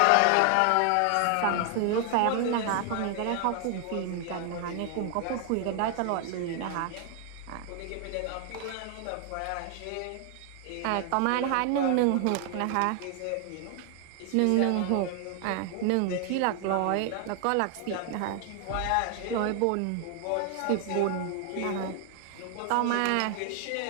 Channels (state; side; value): different; both; correlation 0.00